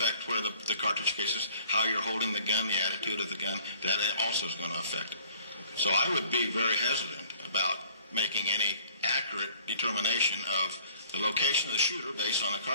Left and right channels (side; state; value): both; inverted; correlation -0.55